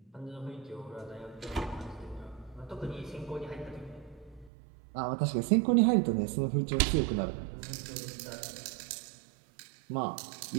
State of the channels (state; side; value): drops out; left; at 4.5 s